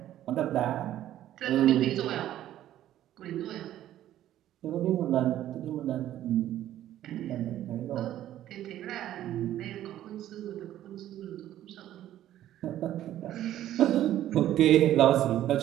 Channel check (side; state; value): left; quieter; 12.6 dB